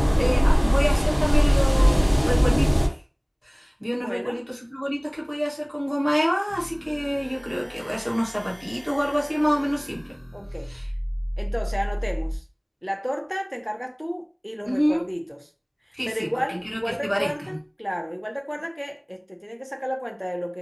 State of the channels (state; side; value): identical; both; correlation 1.00